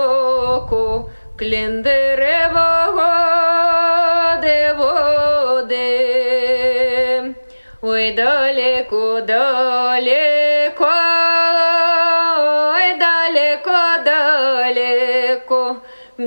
клін деревого води. Ой, далеко, далеко, ой, далеко, далеко,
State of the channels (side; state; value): both; inverted; correlation -1.00